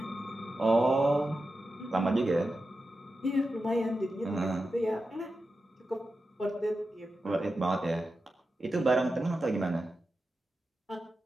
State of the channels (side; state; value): both; normal; correlation 0.91